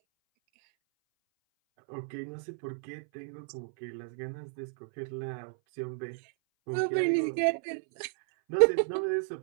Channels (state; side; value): silent; left; 57 dB below the other